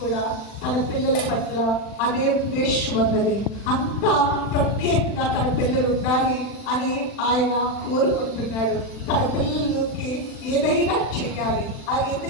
తన పిల్లల పట్ల అదే ఉద్దేశం ఉన్నది. అంత ప్రత్యేకంగా తన పిల్లలు ఉండాలి అని ఆయన కోరుకుంటున్నాడు. తన పిల్లలకి ఏదైనా చెయ్యాలి.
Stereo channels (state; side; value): late; right; 40 ms